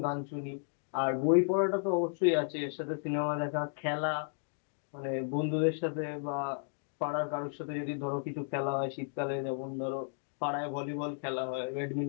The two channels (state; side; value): silent; right; digital silence